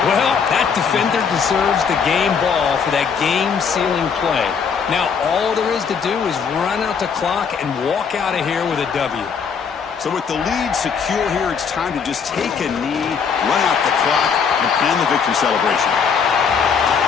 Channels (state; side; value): quieter; right; 6.3 dB